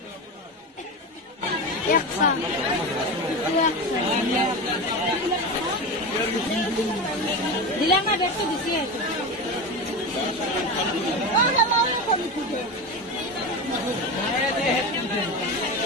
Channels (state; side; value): normal; both; correlation 0.22